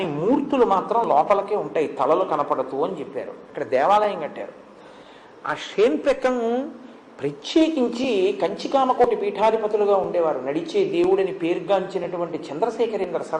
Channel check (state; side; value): identical; both; correlation 1.00